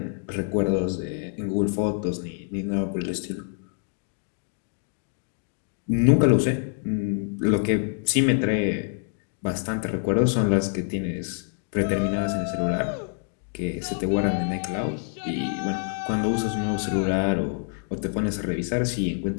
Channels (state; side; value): silent; right; 55 dB below the other